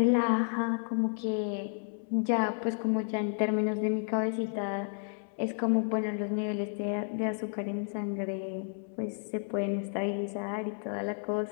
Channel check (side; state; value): right; silent; digital silence